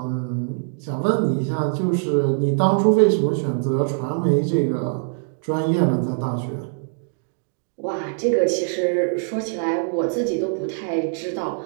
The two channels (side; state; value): left; silent; digital silence